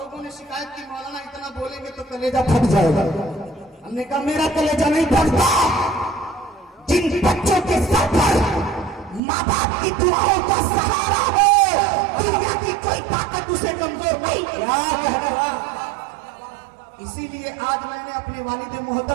ने शिकायत की मौलाना इतना बोलेंगे तो कलेजा फट जाएगा। हमने कहा मेरा कलेजा नहीं फटता। जिन बच्चों के सर पर माँ बाप की दुआओं का सहारा हो, दुनिया की कोई ताकत उसे कमजोर नहीं। इसीलिए आज मैंने अपने वालिद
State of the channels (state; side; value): drops out; left; at 9.2 s